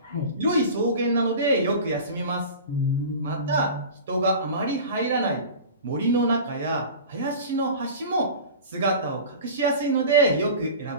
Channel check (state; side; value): inverted; both; correlation -0.35